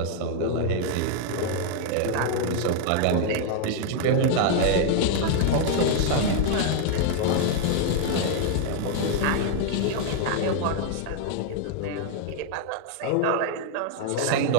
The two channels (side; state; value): both; different; correlation 0.00